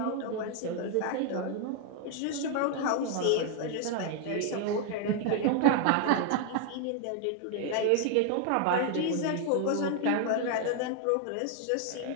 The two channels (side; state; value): both; different; correlation 0.00